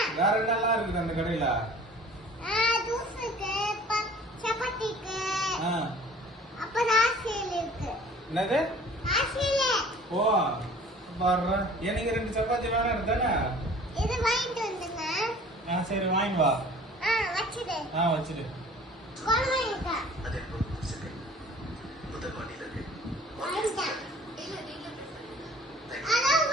வேற என்னெல்லாம் இருக்குது அந்த கடையில? என்னது? ஓ பாரு, எனக்கு 2 சப்பாத்தி வேணும் இருந்தானே. சரி வாங்கி வா. வச்சிடு. Hello,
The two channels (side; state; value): both; normal; correlation 0.48